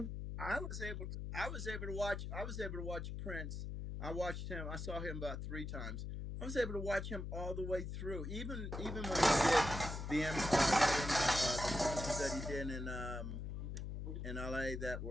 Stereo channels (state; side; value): noise; left; hum, 5 dB below the sound